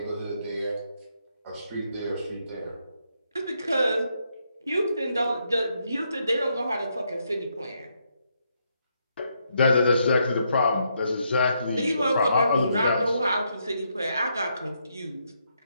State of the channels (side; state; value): both; inverted; correlation -0.77